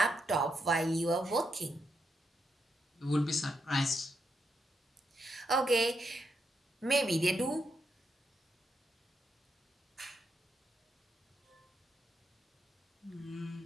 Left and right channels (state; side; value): normal; both; correlation 0.81